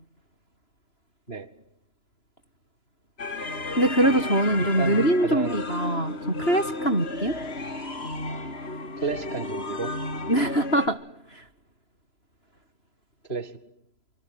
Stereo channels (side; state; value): right; late; 3.0 ms